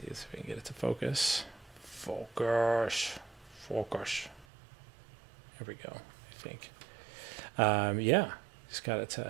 if we can get it to focus. Focus. There we go, I think. Yeah, just got it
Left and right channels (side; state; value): left; drops out; at 4.5 s